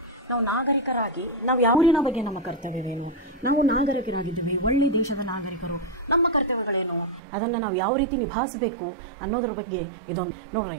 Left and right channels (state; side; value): drops out; left; at 7.2 s